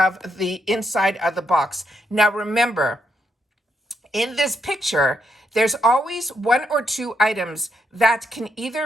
the inside of the box. Now remember, in this picture, there's always 1 or 2 items that can either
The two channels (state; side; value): normal; both; correlation 0.79